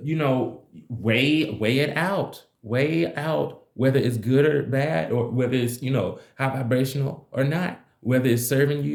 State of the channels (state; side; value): identical; both; correlation 1.00